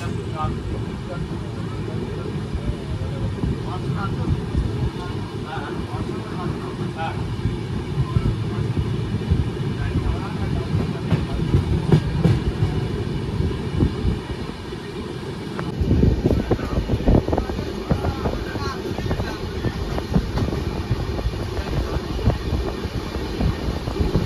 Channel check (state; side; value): identical; both; correlation 1.00